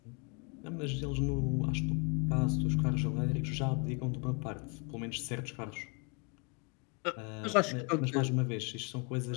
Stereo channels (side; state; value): right; quieter; 34.7 dB